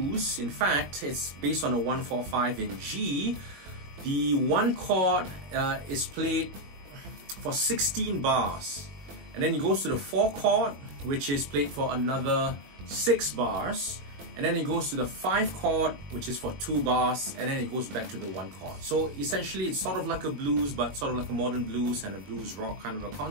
In fact, it's based on a 1-4-5 in G. The one chord is played for 16 bars. And then it goes to the 4 chord, which is played for another 6 bars. And then it goes to the 5 chord, which is for 2 bars, and then it goes back to the 1 chord. So essentially, it's sort of like a blues, but sort of like a modern blues and a blues rock kind of a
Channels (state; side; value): late; left; 21 ms